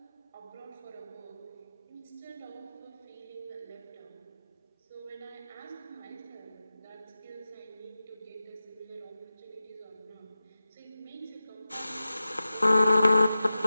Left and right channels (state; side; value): inverted; both; correlation -0.94